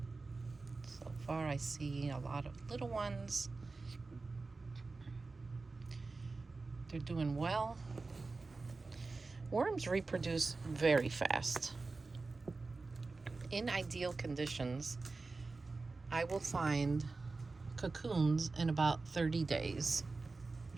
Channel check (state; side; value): quieter; left; 3.8 dB